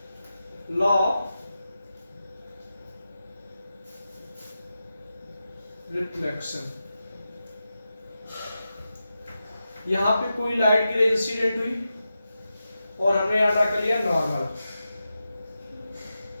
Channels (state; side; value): inverted; both; correlation -0.90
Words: लॉ ऑफ रिफ्लेक्शन। यहां पे कोई लाइट की रे इंसिडेंट हुई और हमने यहां ड्रा कर लिया नॉर्मल।